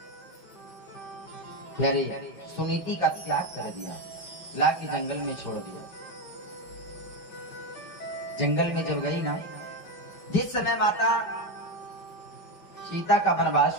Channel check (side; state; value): right; late; 5.4 ms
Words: प्यारे सुनीति का त्याग कर दिया, ला के जंगल में छोड़ दिया। जंगल में जब गई ना, जिस समय माता सीता का वनवास